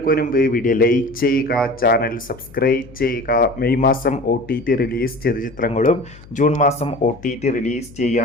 മുൻപ് വീഡിയോ ലൈക്ക് ചെയ്യുക, ചാനൽ സബ്സ്ക്രൈബ് ചെയ്യുക. മെയ് മാസം OTT റിലീസ് ചെയ്ത ചിത്രങ്ങളും ജൂൺ മാസം OTT റിലീസ്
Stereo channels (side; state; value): left; noise; hum, 21 dB below the sound